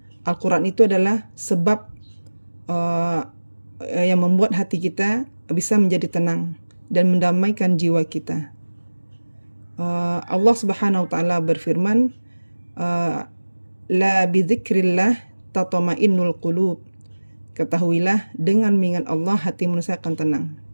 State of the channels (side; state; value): both; inverted; correlation -1.00